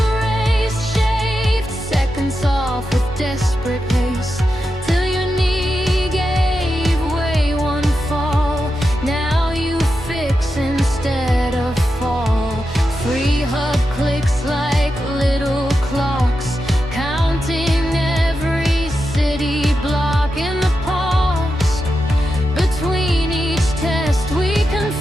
raced, shaved seconds off with desperate pace, till your knee gave way one fall. Now you fix instead of fall. Free hug clicks like little clocks, counting every city block. In the pause between each test, we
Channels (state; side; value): normal; both; correlation 0.88